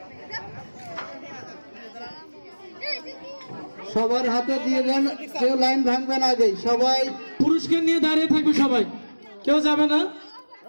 সবার হাতে দিয়ে দেন, কেউ লাইন ভাঙবে না আগে। সবাই পুরস্কার নিয়ে দাঁড়িয়ে থাকবে, সবাই কেউ যাবে না।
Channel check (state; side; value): inverted; both; correlation -1.00